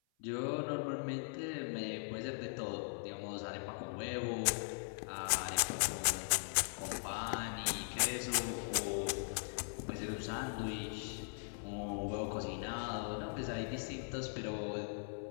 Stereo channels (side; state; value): right; silent; 51 dB below the other